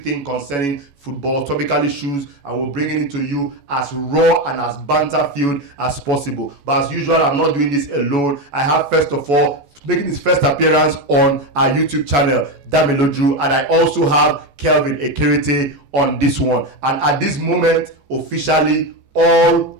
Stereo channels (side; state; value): left; late; 14 ms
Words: concerning football, topical issues, and we're bringing it to you as raw and as banter-filled as possible. But as usual, I'm not doing this alone. I have, first of all, making his first appearance on our YouTube channel, Damiloju, and I also have Kelvin Ekerete on this one. And at this moment, officially, all